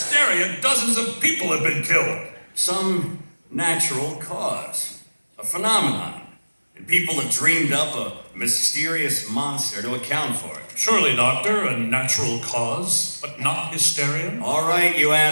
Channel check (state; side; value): inverted; both; correlation -1.00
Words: dozens of people have been killed. Some natural cause. A phenomenon. And people have dreamed up a mysterious monster to account for it. Surely, Doctor, a natural cause, but not hysteria? All right, you